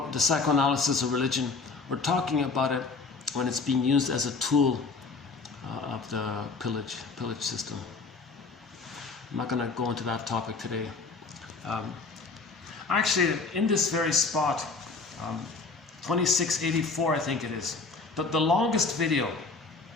the psychoanalysis of religion, we're talking about it when it's being used as a tool of the pillage system. I'm not going to go into that topic today. Actually, in this very spot, 2684 I think it is, the longest video,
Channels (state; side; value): quieter; right; 4.2 dB